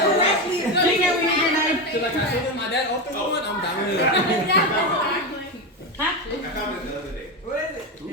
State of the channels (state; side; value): normal; both; correlation 0.15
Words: Bring it, we need your knife. So like I told him my dad opened one, I'm down with it. I found it the other day.